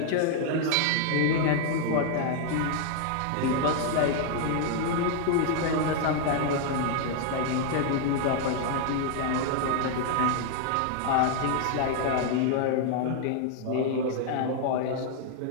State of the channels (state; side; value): different; both; correlation 0.00